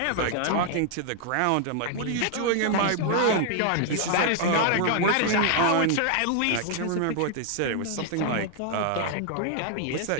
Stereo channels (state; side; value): different; both; correlation 0.00